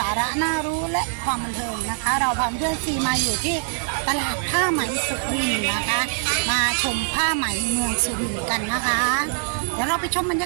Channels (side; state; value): left; silent; digital silence